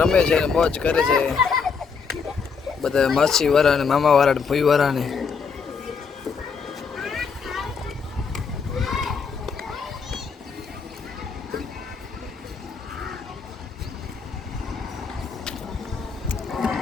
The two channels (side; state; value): right; quieter; 5.6 dB